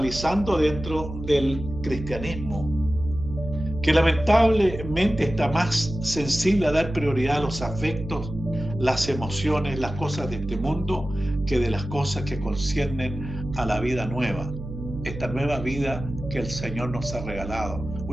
dentro del cristianismo, que lamentablemente está más sensible a dar prioridad a los afectos, las emociones, las cosas de este mundo, que de las cosas que conciernen a la vida nueva, esta nueva vida que el Señor nos ha regalado,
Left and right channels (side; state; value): right; noise; hum, 9 dB below the sound